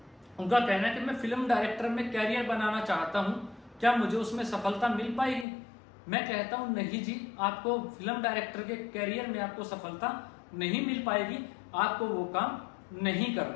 उनका कहना है कि मैं फिल्म डायरेक्टर में कैरियर बनाना चाहता हूं, क्या मुझे उसमें सफलता मिल पाएगी। मैं कहता हूं नहीं जी, आपको फिल्म डायरेक्टर के कैरियर में आपको सफलता नहीं मिल पाएगी, आपको वो काम नहीं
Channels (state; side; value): drops out; right; at 5.5 s